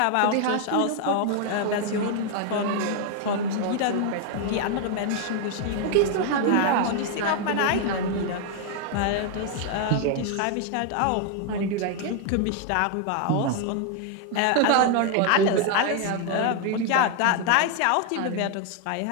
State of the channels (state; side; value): different; both; correlation 0.00